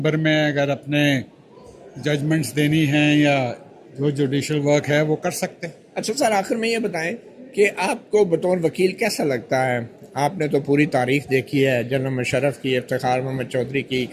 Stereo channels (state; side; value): identical; both; correlation 1.00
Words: में अगर अपने जजमेंट्स देनी हैं या जो जुडिशल वर्क है वो कर सकते हैं। अच्छा सर, आखिर में ये बताएं कि आपको बतौर वकील कैसा लगता है? आपने तो पूरी तारीख देखी है, जनरल मुशर्रफ की, इफ्तिखार मोहम्मद चौधरी की,